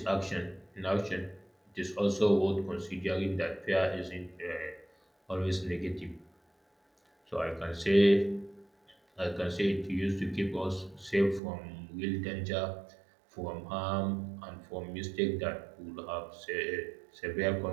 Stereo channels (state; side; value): drops out; left; at 11.4 s